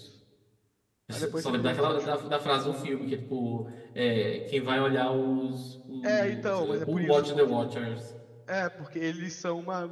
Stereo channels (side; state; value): both; identical; correlation 1.00